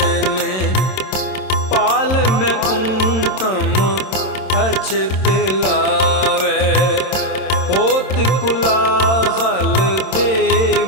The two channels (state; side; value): late; right; 27 ms